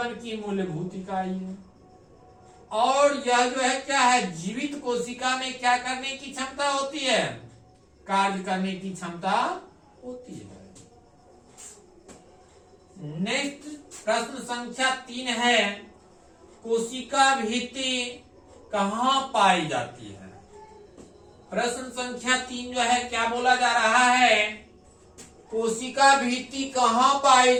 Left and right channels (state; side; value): identical; both; correlation 1.00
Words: की मूलभूत इकाई है। और यह जो है क्या है? जीवित कोशिका में क्या करने की क्षमता होती है? कार्य करने की क्षमता होती है। नेक्स्ट प्रश्न संख्या 3 है, कोशिका भित्ति कहाँ पाई जाती है? प्रश्न संख्या 3 जो है क्या बोला जा रहा है? कोशिका भित्ति कहाँ पाई